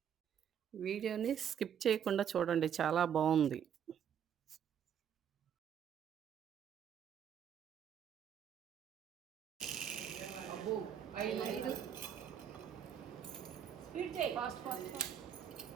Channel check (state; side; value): quieter; left; 8.7 dB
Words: వీడియోని స్కిప్ చేయకుండా చూడండి. చాలా బావుంది. అబ్బో! 5 స్పీడ్ చేయి. Fast fast